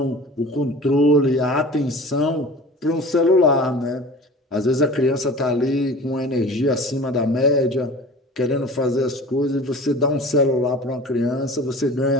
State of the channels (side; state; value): both; normal; correlation 0.40